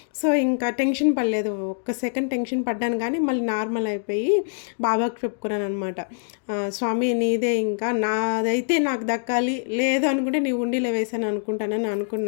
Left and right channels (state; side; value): silent; right; digital silence